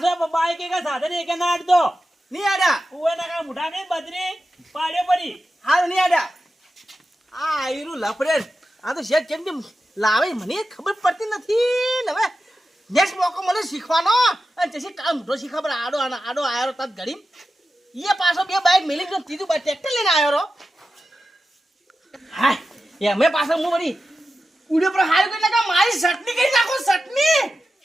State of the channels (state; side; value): normal; both; correlation 0.92